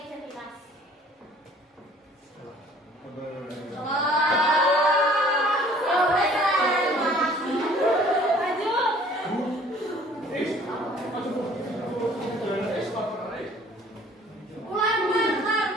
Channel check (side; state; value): both; normal; correlation 0.54